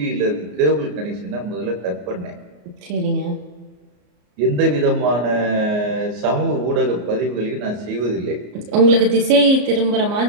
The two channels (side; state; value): left; late; 34 ms